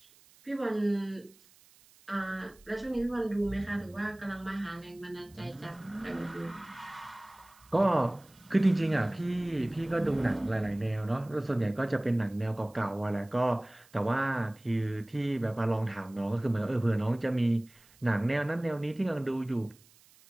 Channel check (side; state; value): right; noise; hiss, 28 dB below the sound